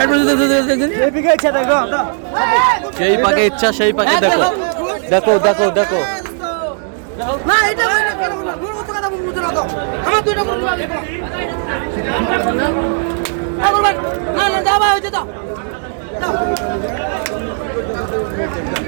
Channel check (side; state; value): left; silent; 56 dB below the other